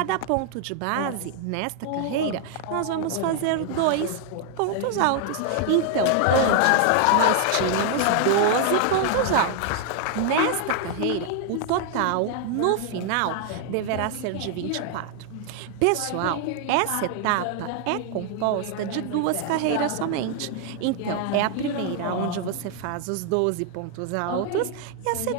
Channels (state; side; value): different; both; correlation 0.00